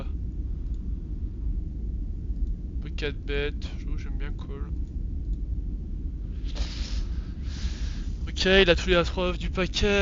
4 bet. J'aime bien call. Ok, il a tous les as off du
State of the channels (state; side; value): identical; both; correlation 1.00